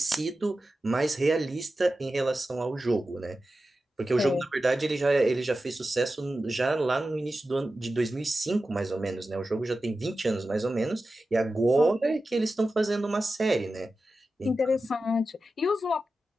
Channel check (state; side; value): normal; both; correlation 0.93